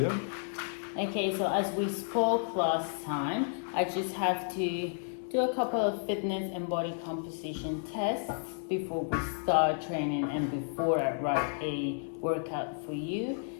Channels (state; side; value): silent; right; digital silence